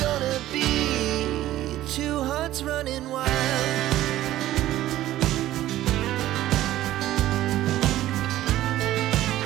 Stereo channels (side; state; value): left; quieter; 14.3 dB